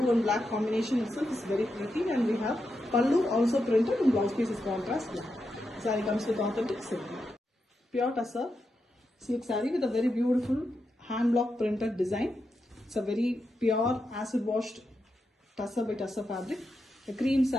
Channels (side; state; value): both; normal; correlation 0.86